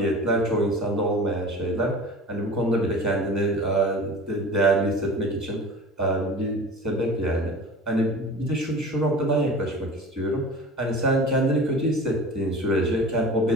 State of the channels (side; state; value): both; normal; correlation 0.38